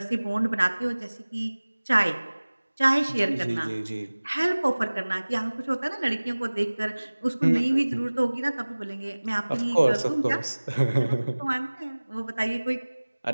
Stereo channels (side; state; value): both; inverted; correlation -1.00